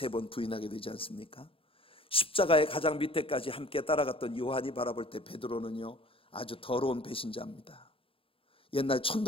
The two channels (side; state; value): right; late; 0.26 ms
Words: 부인하게 되지 않습니까? 십자가의 가장 밑에까지 함께 따라갔던 요한이 바라볼 때 베드로는요, 아주 더러운 배신자입니다. 옛날